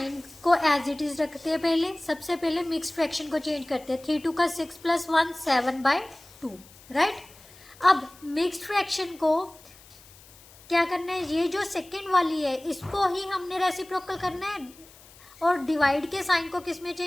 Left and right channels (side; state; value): left; noise; hiss, 23 dB below the sound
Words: को एज इट इज़ रखते हैं। पहले सबसे पहले मिक्स फ्रैक्शन को चेंज करते हैं, 3 2 का 6 + 1 7/2, राइट। अब मिक्स्ड फ्रैक्शन को क्या करना है, ये जो सेकेंड वाली है इसको ही हमने रेसिप्रोकल करना है और डिवाइड के साइन को किस में